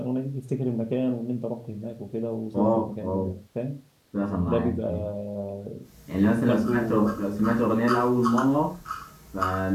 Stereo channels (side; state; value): both; identical; correlation 1.00